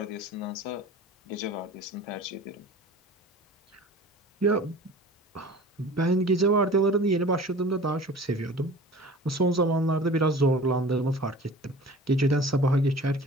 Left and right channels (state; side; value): normal; both; correlation 0.42